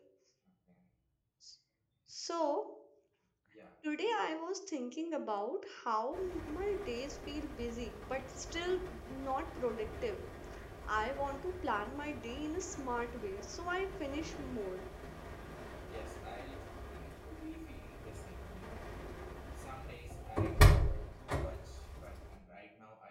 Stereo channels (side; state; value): both; identical; correlation 1.00